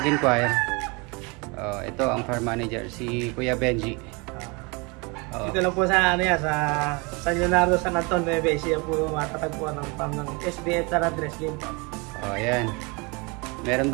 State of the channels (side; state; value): left; quieter; 29.0 dB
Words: Ito ang farm manager, si Kuya Benji. Dito lang po sa sa San Leonardo, San Anton, Nueva Ecija po matatagpuan ng farm ng SBF San Andres Game Farm. Ayan. Meron